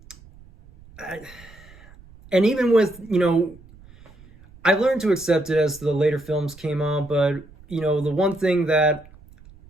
and even with, you know, I learned to accept it as the later films came on, but, you know, the one thing that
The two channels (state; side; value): noise; right; rumble, 23 dB below the sound